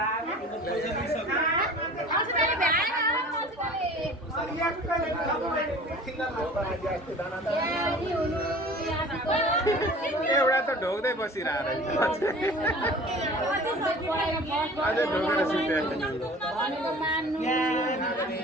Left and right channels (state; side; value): normal; both; correlation 0.44